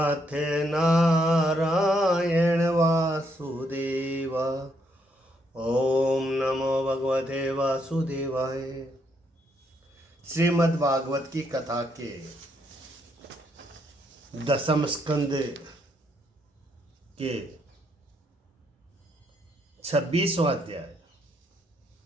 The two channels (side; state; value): both; normal; correlation 0.75